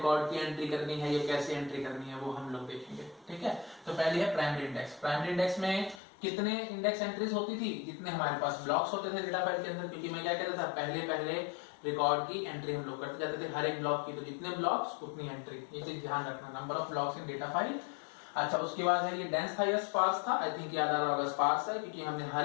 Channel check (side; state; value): right; drops out; at 6.0 s